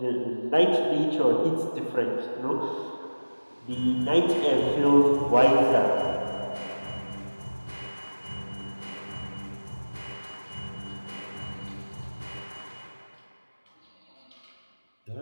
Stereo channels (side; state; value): both; inverted; correlation -1.00